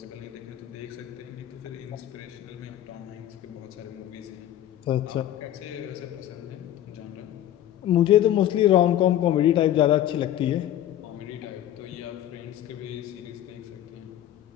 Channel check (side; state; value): right; quieter; 12.1 dB